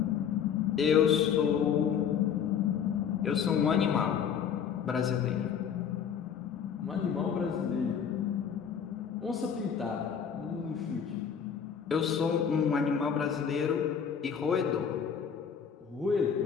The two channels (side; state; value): right; quieter; 7.6 dB